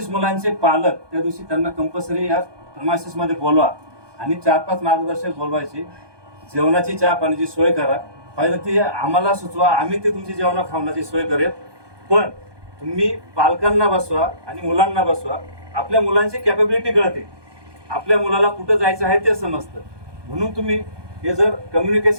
मुलांचे पालक त्या दिवशी त्यांना कंपल्सरी या प्रमासिस मध्ये बोलवा आणि 4-5 मार्गदर्शक बोलवायचे. जेवणाची चहा पाण्याची सोय करा. पाहिजे ती आम्हाला सुचवा, आम्ही ते तुमची जेवणा खावण्याची सोय करेल. पण तुम्ही पालकांना बसवा आणि मुलांना बसवा. आपल्या मुलांची कॅपेबिलिटी कळते, आपल्या मुलाला कुठं जायचं आहे ते समजतं. म्हणून तुम्ही हे जर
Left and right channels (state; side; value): late; left; 1.2 ms